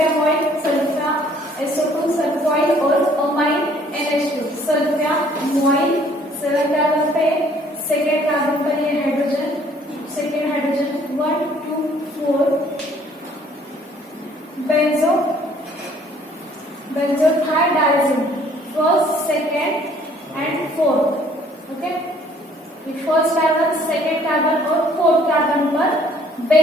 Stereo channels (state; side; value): normal; both; correlation 0.60